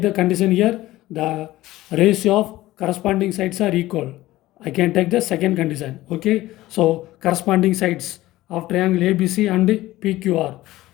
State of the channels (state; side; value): quieter; right; 16.7 dB